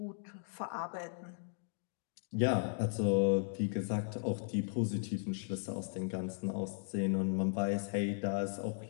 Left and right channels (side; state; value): right; silent; digital silence